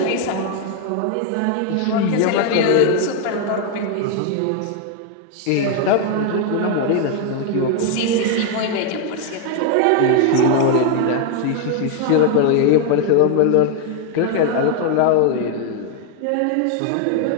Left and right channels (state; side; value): different; both; correlation 0.01